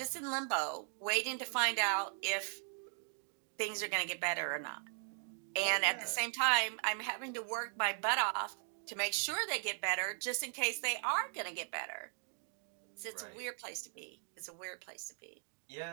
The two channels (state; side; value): silent; left; 52 dB below the other